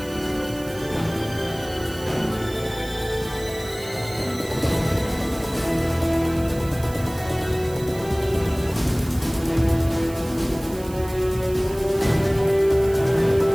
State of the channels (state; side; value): noise; right; hiss, 18 dB below the sound